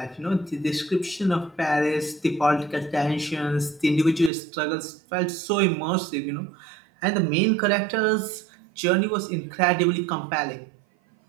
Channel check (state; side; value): drops out; left; at 4.3 s